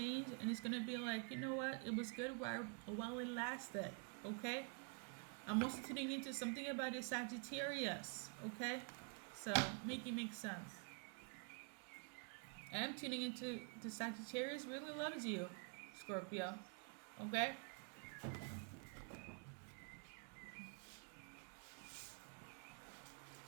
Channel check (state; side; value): quieter; left; 38.5 dB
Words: and it's gonna be like, you know what? It was good while it lasted. Okay. I'm also tuning into something about the Sagittarius. Okay. So make it make sense. And I'm tuning into the Sagittarius really loves you, Scorpio. Okay.